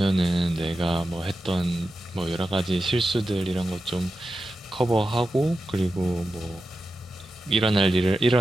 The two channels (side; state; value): both; normal; correlation 0.91